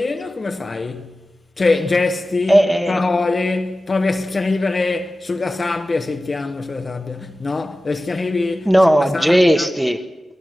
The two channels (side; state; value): both; normal; correlation 0.95